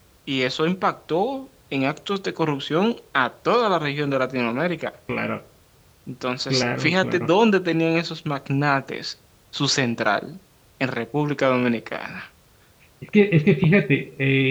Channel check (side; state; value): both; identical; correlation 1.00